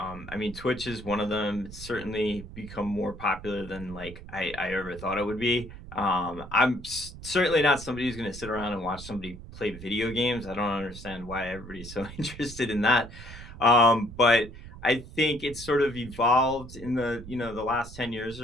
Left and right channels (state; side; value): noise; right; rumble, 14 dB below the sound